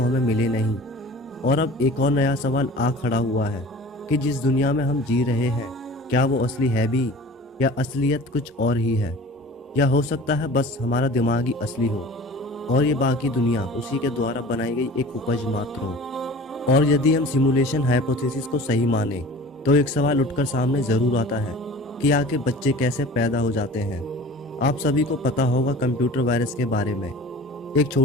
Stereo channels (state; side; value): normal; both; correlation 0.42